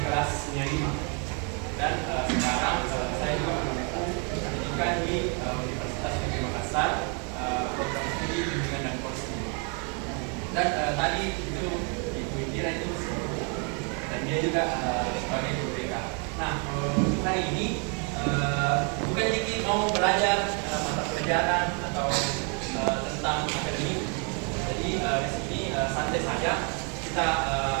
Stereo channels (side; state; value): left; quieter; 36.7 dB